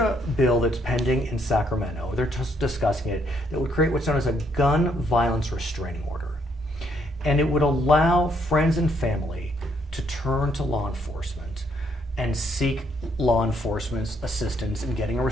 bill that's pending in Sacramento. They're just discussing it that would create what's known as a gun violence restraining order. And it would allow friends and family to turn to law enforcement and seek law enforcement's assistance in getting a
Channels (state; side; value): normal; both; correlation 0.71